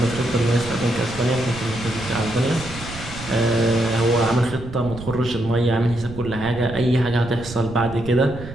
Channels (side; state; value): right; noise; rumble, 12 dB below the sound